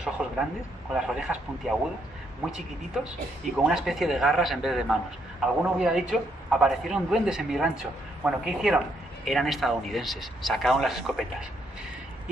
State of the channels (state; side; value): normal; both; correlation 0.74